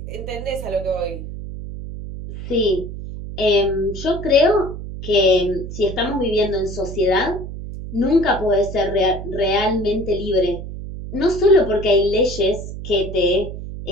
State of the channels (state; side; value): noise; right; hum, 9 dB below the sound